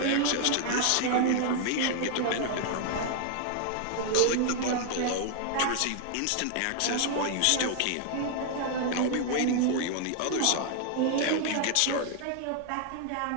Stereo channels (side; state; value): both; different; correlation 0.00